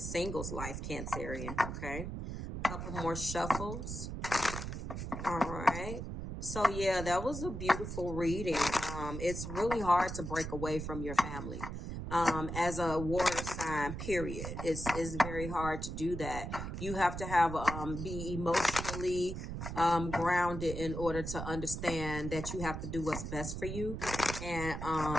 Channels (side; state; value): right; noise; rumble, 6 dB below the sound